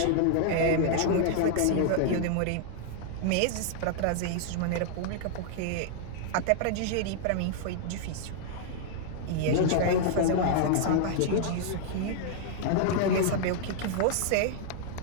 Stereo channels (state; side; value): different; both; correlation -0.01